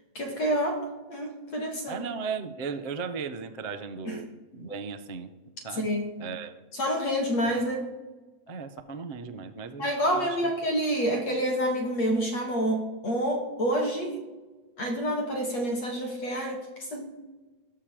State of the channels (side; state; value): right; late; 8.4 ms